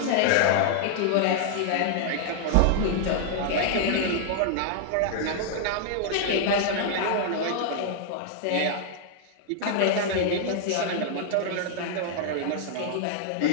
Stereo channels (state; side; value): different; both; correlation 0.00